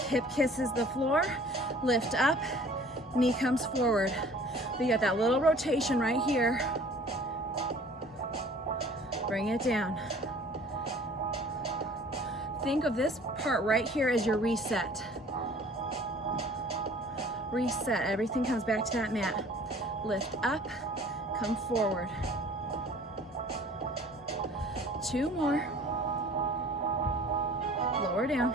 Hip kisses the floor. Lift up. Knee comes forward. We got that little rotation right here. Bring it down. Think of this part right here as your reset. Reset. Everything comes back to that mat. Lift up. Come forward. 2 more. Lower down.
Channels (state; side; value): normal; both; correlation 0.50